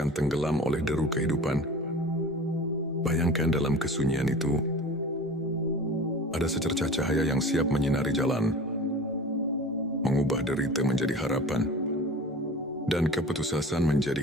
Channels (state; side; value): normal; both; correlation 0.38